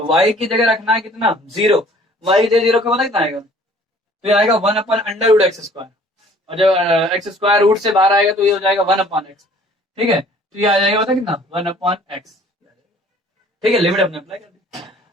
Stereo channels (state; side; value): normal; both; correlation 0.54